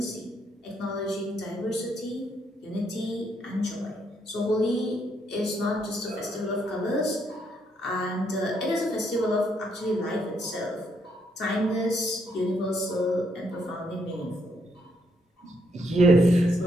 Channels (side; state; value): both; normal; correlation 0.74